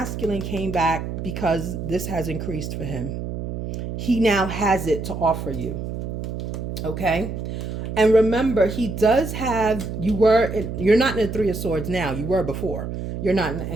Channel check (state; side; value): noise; right; hum, 5 dB below the sound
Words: came back because this has increased for him. He now has it to offer you. Okay? And remember, he does have, you're not in the Three of Swords now. You were before. You're not